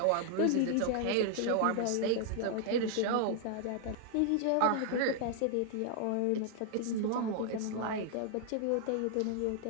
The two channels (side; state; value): both; different; correlation 0.00